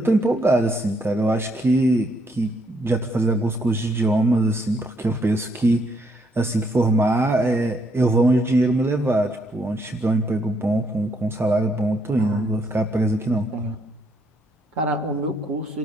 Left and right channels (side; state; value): both; normal; correlation 0.73